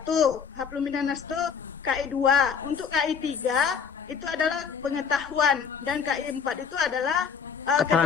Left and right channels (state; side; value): quieter; right; 6.6 dB